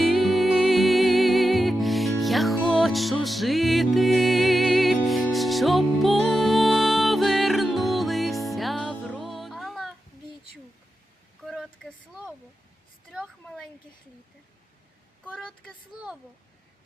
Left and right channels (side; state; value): both; normal; correlation 0.90